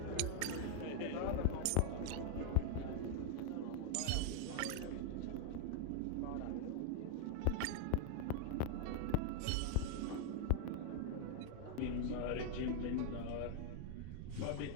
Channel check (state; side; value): different; both; correlation 0.00